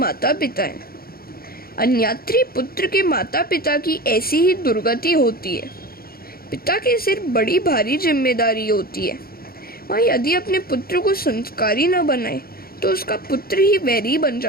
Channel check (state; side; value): late; right; 0.44 ms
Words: पिता हैं। अन्यात्री पुत्र के माता पिता की ऐसी ही दुर्गति होती है। पिता के सिर बड़ी भारी जिम्मेदारी होती है। वह यदि अपने पुत्र को संस्कारी न बनाए तो उसका पुत्र ही वैरी बन